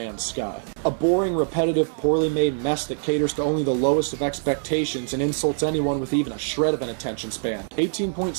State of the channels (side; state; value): left; silent; digital silence